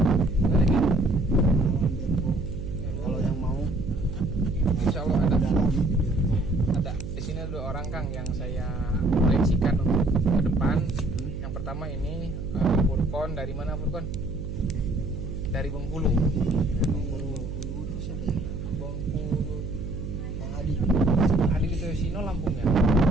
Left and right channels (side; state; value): right; noise; hum, 6 dB below the sound